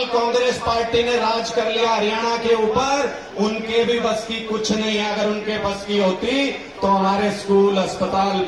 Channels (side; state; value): both; identical; correlation 1.00